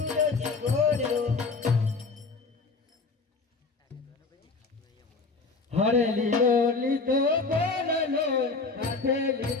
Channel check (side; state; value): right; quieter; 4.1 dB